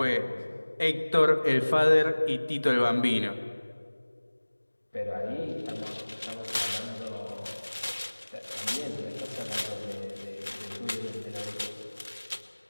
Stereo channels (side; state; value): both; inverted; correlation -1.00